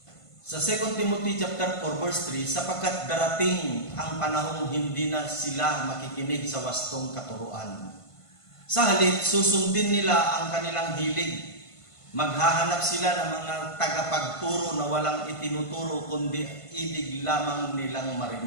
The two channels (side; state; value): right; late; 1.5 ms